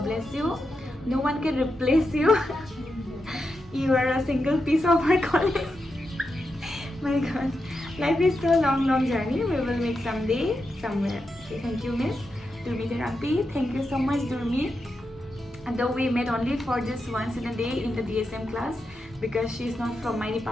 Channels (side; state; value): both; normal; correlation 0.87